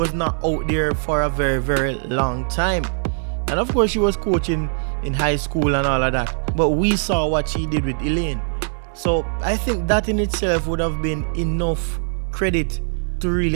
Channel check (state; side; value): silent; left; digital silence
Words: not out there for a very, very long time. And of course, she was coaching in high school and all of that, but we saw what she did with Elaine. So I think that in itself would have been enough credit to